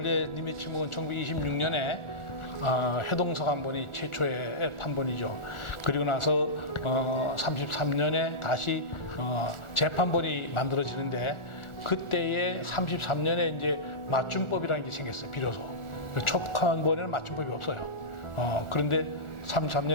님의 침묵은 1926년에 해동서간본이 최초의 판본이죠. 그리고 나서 33년에 다시 재판본이 만들어지는데 그때에 33년에 이제 맞춤법이라는 게 생겼어요. 비로소 촉판본에는 맞춤법이 없어요. 그런데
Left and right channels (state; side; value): late; right; 1.4 ms